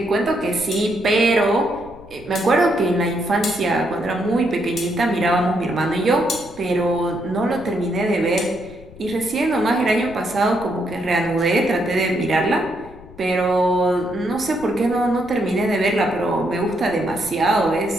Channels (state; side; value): noise; left; rumble, 20 dB below the sound